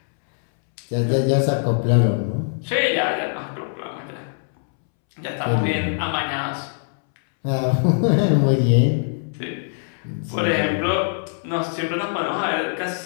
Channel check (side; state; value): right; silent; 64 dB below the other